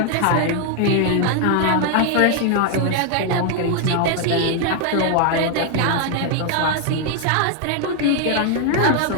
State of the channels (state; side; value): different; both; correlation 0.00